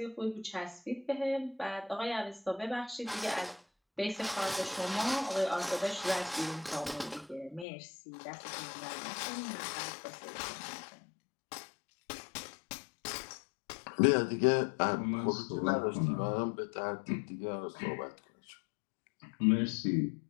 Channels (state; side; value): drops out; right; at 7.7 s